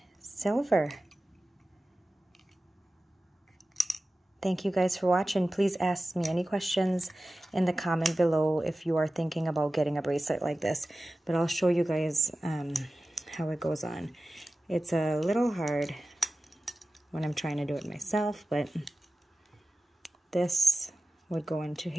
silver. Thank you guys for watching. Please ask me any questions in the comment below if you are thinking about getting a bracelet like this. But I'll show you guys how it goes on. It's a little hard when I'm trying to do it myself, but this would go into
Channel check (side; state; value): both; normal; correlation 0.95